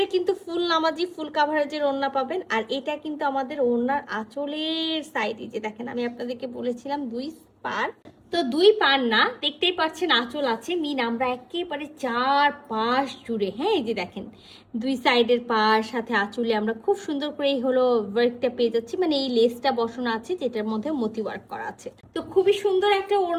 কিন্তু ফুল নামাজি ফুল কাভারেজের ওড়না পাবেন। আর এটা কিন্তু আমাদের ওড়নার আঁচলের সাইডে, যে দেখেন আমি আপনাদেরকে বলেছিলাম 2 পার, তো 2 পার না, দেখতেই পাচ্ছেন আঁচল আছে, মিন আমরা একেবারে 4 পাশ জুড়ে, হ্যাঁ এই যে দেখেন 2 সাইডের পাশ সাথে আঁচলে আমরা খুব সুন্দর করে এই হলো ওয়ার্কটা পেয়ে যাচ্ছি, মানে এই লেসটা বসানো আছে যেটার মধ্যে মতি ওয়ার্ক করা আছে। তো খুবই সুন্দর একটা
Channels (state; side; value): identical; both; correlation 1.00